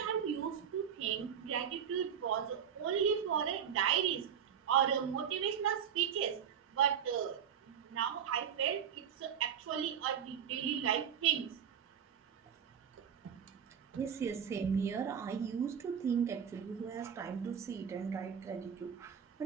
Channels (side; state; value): left; quieter; 8.2 dB